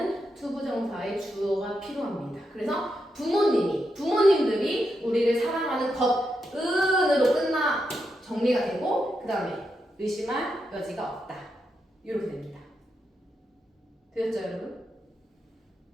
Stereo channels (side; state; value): both; normal; correlation 0.85